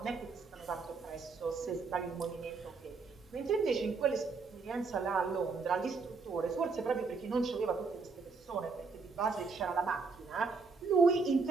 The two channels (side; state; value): left; quieter; 4.5 dB